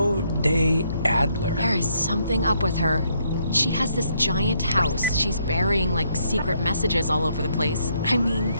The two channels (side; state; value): both; inverted; correlation -0.73